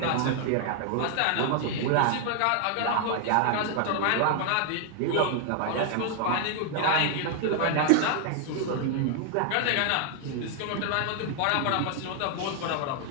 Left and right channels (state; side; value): different; both; correlation 0.00